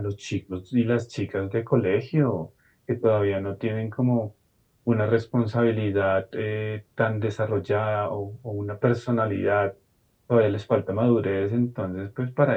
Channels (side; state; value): both; identical; correlation 1.00